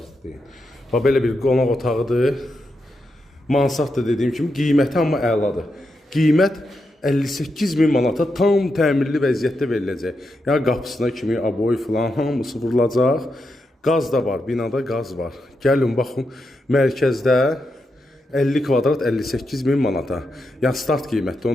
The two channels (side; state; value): both; normal; correlation 0.85